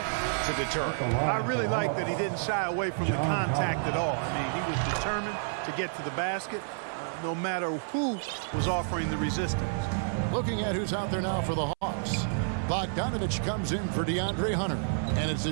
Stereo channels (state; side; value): silent; left; 58 dB below the other